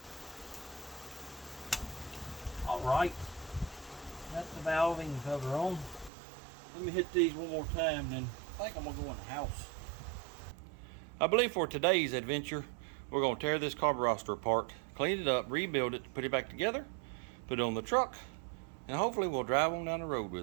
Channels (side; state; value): left; drops out; at 6.1 s